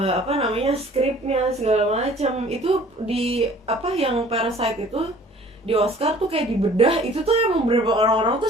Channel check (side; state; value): both; normal; correlation 0.51